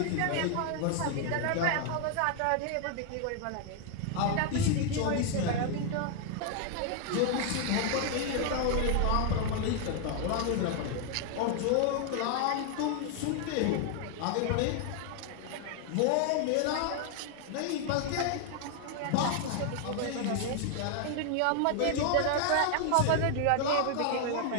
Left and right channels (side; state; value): both; different; correlation 0.00